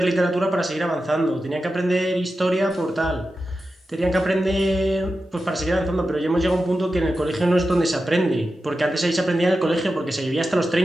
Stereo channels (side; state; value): both; normal; correlation 0.91